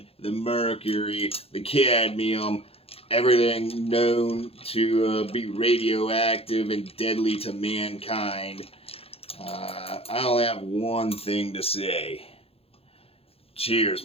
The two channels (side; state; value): right; late; 0.28 ms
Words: the mercury, the cadmium, everything known to be radioactive and deadly to mankind. I only have one thing to say. Cheers,